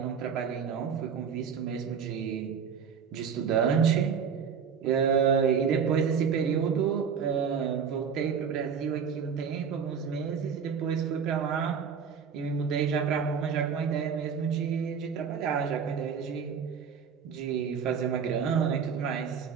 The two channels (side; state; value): left; quieter; 6.8 dB